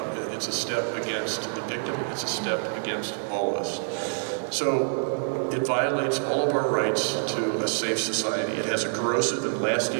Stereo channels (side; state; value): left; silent; digital silence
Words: a step against the victim, it's a step against all of us. So it violates all of our rights to a safe society. It has a corrosive and